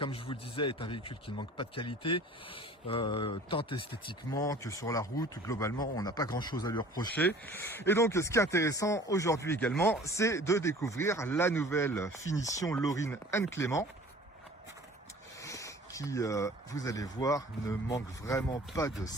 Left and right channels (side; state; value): both; normal; correlation 0.47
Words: je vous le disais, est un véhicule qui ne manque pas de qualité, tant esthétiquement que sur la route. Globalement, on n'a pas grand-chose à lui reprocher. Et donc, ce qui est intéressant aujourd'hui également, c'est de découvrir la nouvelle finition Lorin Clément, qui, vous allez voir, ne manque vraiment pas de